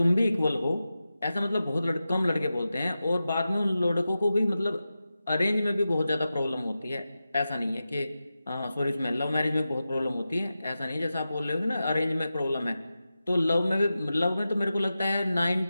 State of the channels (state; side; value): inverted; both; correlation -0.93